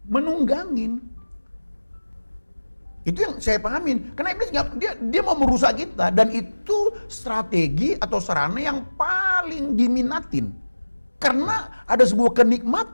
menunggangin. Itu yang saya pahamin. Karena iblis dia mau merusak kita, dan itu strategi atau sarana yang paling diminatin. Karena ada sebuah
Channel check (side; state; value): both; inverted; correlation -1.00